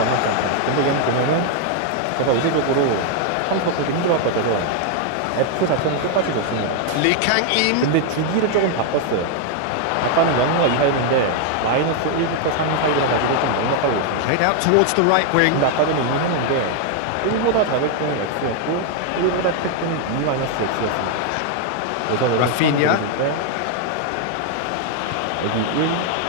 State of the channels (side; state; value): both; different; correlation 0.00